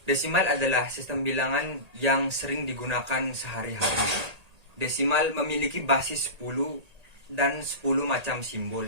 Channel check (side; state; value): left; late; 1.8 ms